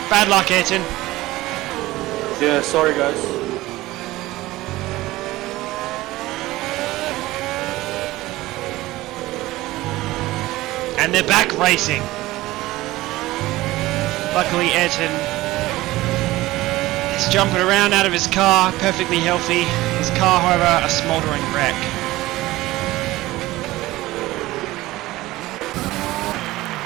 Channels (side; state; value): left; quieter; 17.9 dB